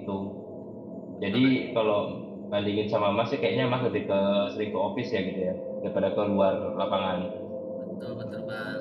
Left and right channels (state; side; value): identical; both; correlation 1.00